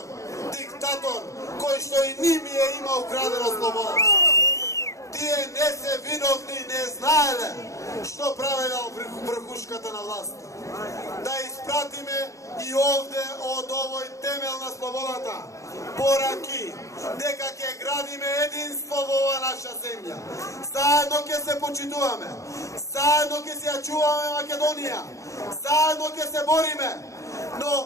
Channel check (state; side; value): late; right; 0.15 ms